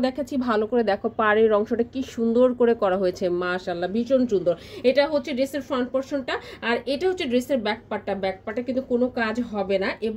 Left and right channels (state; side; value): identical; both; correlation 1.00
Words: দেখাচ্ছি, ভালো করে দেখো পাড়ের অংশটা কি সুন্দর করে করা হয়েছে, মাশাআল্লাহ ভীষণ সুন্দর। এটা হচ্ছে ড্রেসের ফ্রন্ট পোরশনটা, আর এটা হচ্ছে ড্রেসের ব্যাক পার্টটা কিন্তু কোনো কাজ হবে না।